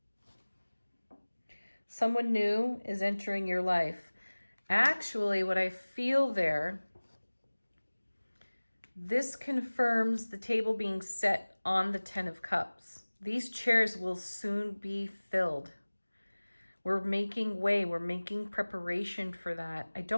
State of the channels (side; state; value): both; inverted; correlation -1.00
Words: Someone new is entering your life. Actually, what I feel there, this confirms the table being set on the 10 of Cups. These chairs will soon be filled. We're making way. We're making preparation for that. I